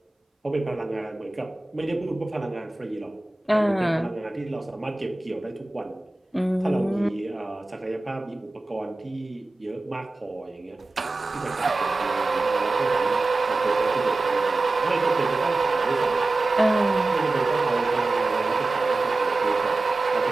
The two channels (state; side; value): quieter; left; 3.1 dB